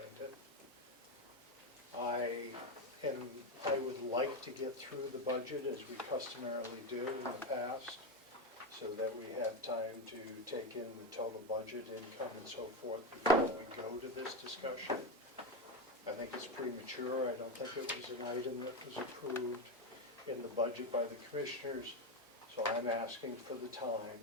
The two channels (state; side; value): normal; both; correlation 0.13